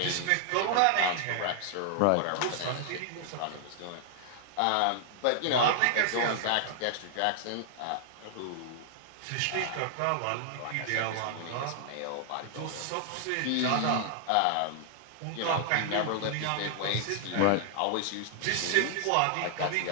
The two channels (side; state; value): both; different; correlation 0.00